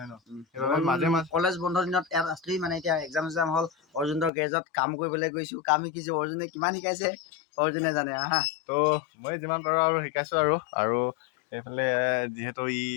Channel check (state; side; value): drops out; right; at 4.3 s